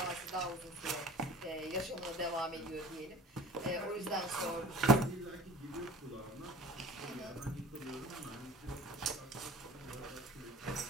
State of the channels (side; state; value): both; normal; correlation 0.43